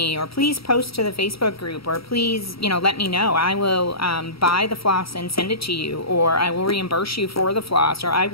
or please post to the Facebook group, or please, you know, let me know. I will buy the floss and send it to you, or I will reimburse you for the floss, or I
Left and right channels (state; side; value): late; right; 0.75 ms